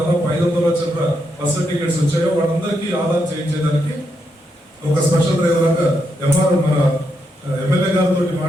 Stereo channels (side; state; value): both; normal; correlation 0.81